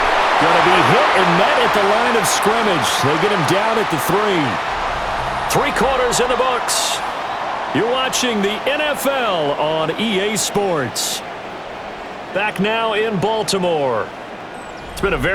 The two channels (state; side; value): identical; both; correlation 1.00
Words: going to be hit and met at the line of scrimmage. They get him down at the 3. 3 quarters in the books. You're watching the NFL on EA Sports. Back now in Baltimore. It's been a